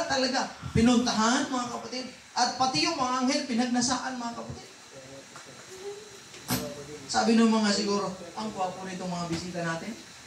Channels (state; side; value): identical; both; correlation 1.00